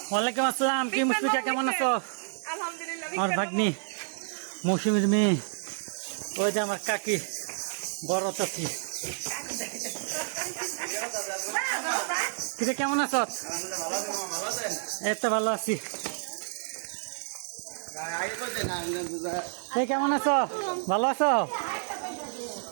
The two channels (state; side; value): silent; left; 58 dB below the other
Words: ওয়ালাইকুম আসসালাম, কি মুশফিকা কেমন আছো? আমার ভাগ্নি মৌসুমীর মেয়ে, ওই যে আমার কাকি বড় চাচি। কিরে কেমন আছো? এই তো ভালো আছি। এই কেমন আছো? ভালো আছো?